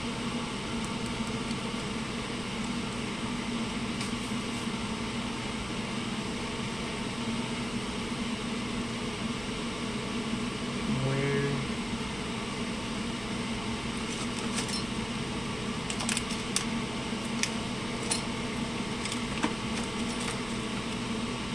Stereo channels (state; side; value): noise; right; rumble, 13 dB below the sound